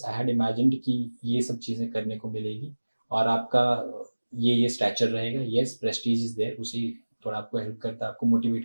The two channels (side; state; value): both; inverted; correlation -1.00